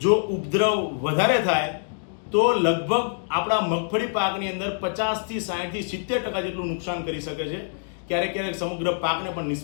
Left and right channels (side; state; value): right; silent; digital silence